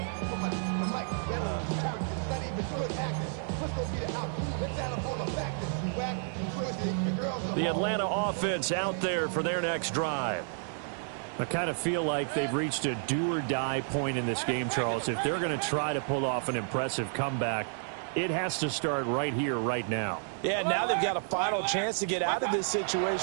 The Atlanta offense out there for their next drive. I kind of feel like they've reached a do-or-die point in this game, Charles. If they're going to try to pull off an impressive comeback, it has to start right here, right now. Yeah, now they've got a final chance to get out of this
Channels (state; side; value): silent; left; digital silence